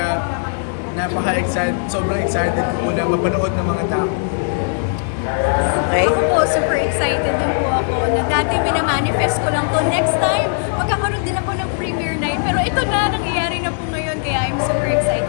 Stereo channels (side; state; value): right; silent; digital silence